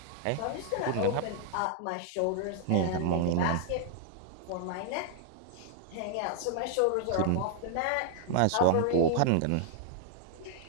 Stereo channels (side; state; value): both; different; correlation -0.01